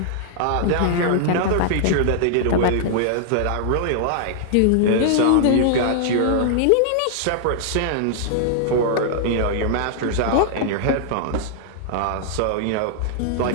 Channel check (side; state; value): both; different; correlation -0.01